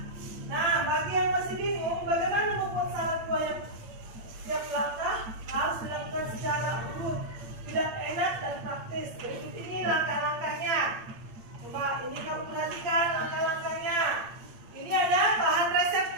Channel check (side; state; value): left; late; 8.8 ms